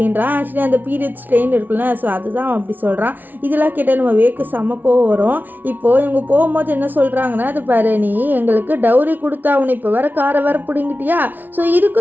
ஆக்சுவலி அந்த பீரியட் ஸ்ட்ரெயின் இருக்குல்ல, ஸோ அதுதான் அப்படி சொல்கிறான். இதெல்லாம் கேட்டால் நம்ம வேக்கு செம்மக்கோ வரும். இப்போது இவங்க போகும்போது என்ன சொல்கிறாங்கன்னா, அது பாரு நீ எங்களுக்கு டவுரி கொடுத்தா உனக்கு இப்போ வேறு காரை வேறு பிடிங்கிட்டியா, ஸோ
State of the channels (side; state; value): left; late; 0.085 ms